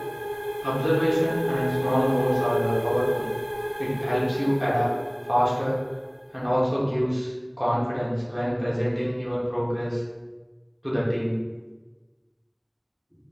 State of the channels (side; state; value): both; identical; correlation 1.00